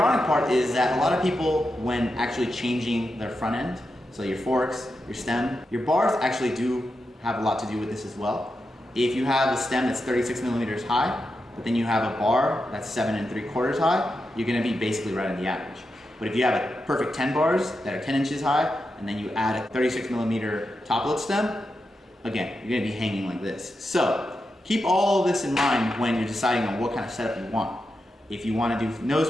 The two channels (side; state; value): both; normal; correlation 0.88